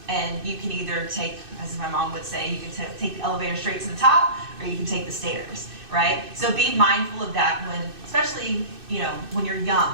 And you can either take, as my mom would say, you can take the elevator straight to the top, or you can take the stairs, right? So be mindful of that when, especially, when you're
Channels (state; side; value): late; left; 2.6 ms